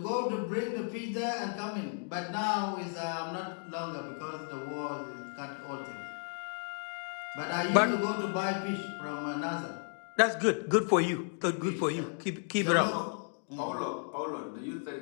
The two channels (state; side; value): silent; right; 55 dB below the other